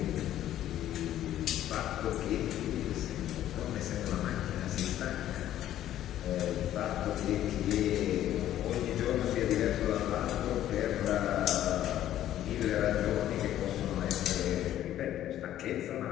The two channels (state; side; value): quieter; right; 12.4 dB